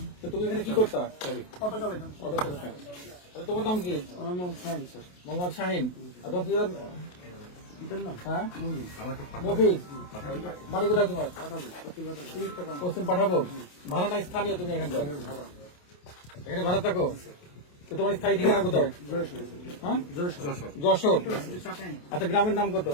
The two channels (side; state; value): right; late; 28 ms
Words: তো তুমি এখানে কি করতা? অটো চালাইতাম। অটো চালাতা। আচ্ছা, তোমার নাম কি? আমার নাম শাহিন স্যার। মোহাম্মদ শাহিন। আর তোমার পিতার নাম? হ্যাঁ, মফিজ। বাড়ি কোথায় তোমার? পশ্চিম পাঠাবো। ভাড়া নাই, স্থানীয় তুমি এখানকার? এখানে ভাড়া থাকো। তো তোমার স্থায়ী ঠিকানা কোথায়? হ্যাঁ, যশোর। আচ্ছা, গ্রামের নাম কত?